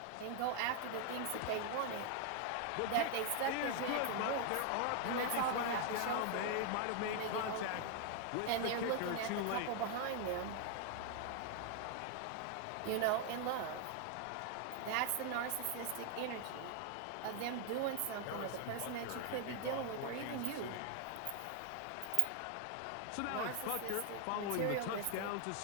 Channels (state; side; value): different; both; correlation 0.00